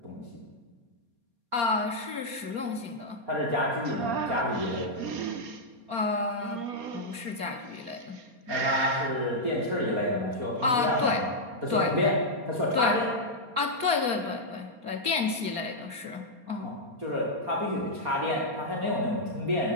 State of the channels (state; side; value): late; left; 4.3 ms